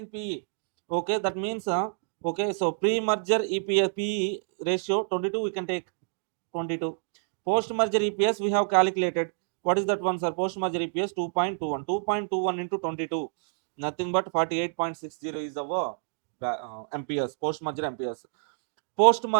PE. Okay, that means okay, so pre-merger EPS PE ratio 22 we can take 22. Post-merger EPS we have calculated. What is that one, sir? Post-merger EPS 2.21. 2.21 into 22. Nothing but 48.60 is our MPS, post-merger MPS.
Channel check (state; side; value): silent; left; digital silence